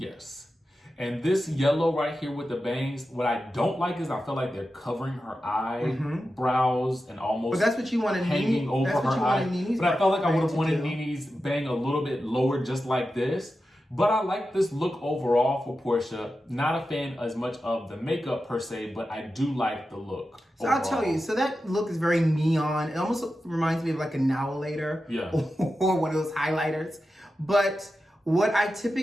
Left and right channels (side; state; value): both; normal; correlation 0.91